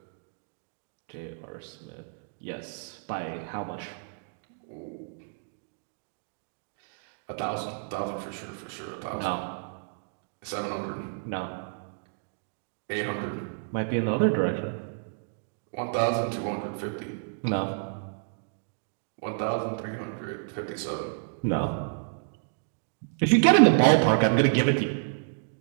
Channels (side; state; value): left; silent; digital silence